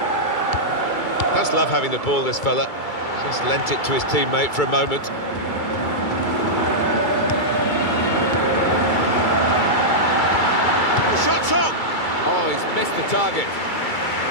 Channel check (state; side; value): late; right; 2.3 ms